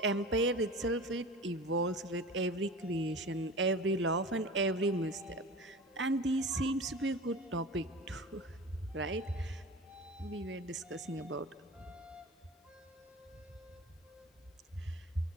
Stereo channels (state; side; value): normal; both; correlation 0.35